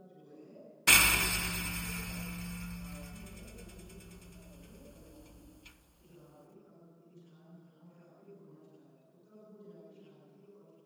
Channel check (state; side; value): identical; both; correlation 1.00